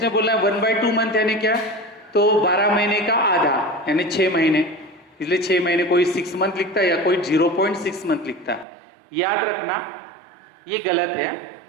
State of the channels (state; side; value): drops out; left; at 8.7 s